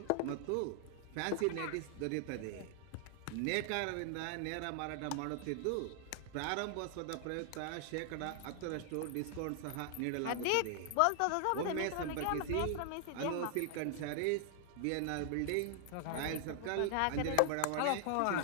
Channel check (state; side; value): different; both; correlation 0.00